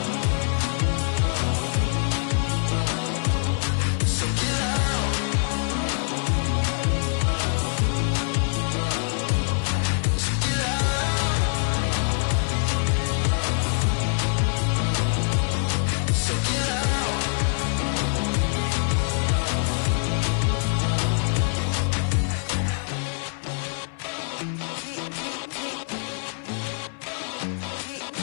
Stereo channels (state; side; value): silent; right; 62 dB below the other